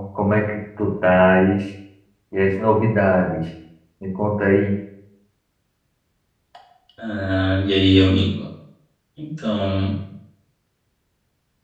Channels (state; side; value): identical; both; correlation 1.00